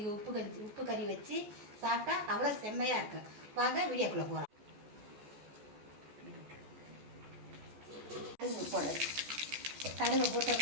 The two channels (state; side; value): late; left; 14 ms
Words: உப்பு கறி வச்சு சாப்பிட்டா அவ்வளோ செம்மையாக இருக்கும். வாங்க வீடியோக்குள்ளே போகலாம். கடுகு போடுறேன். கடுகை